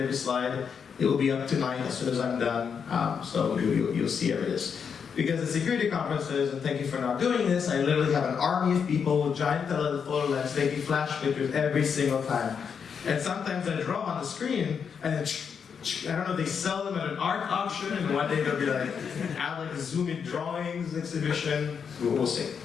slide. It will be up tonight as soon as I'm done. So you'll see every this. Because at security conferences, and thank you for not doing this, I literally have an army of people with giant telephoto lens taking flash pictures every single time. And sometimes I draw on the screen, and I don't know if they sell them at an art auction, and one day they'll be like, add like a zoom-in drawings exhibition. We'll see.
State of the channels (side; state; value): right; quieter; 6.7 dB